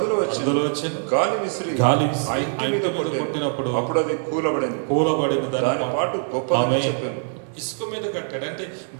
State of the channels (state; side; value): silent; left; 63 dB below the other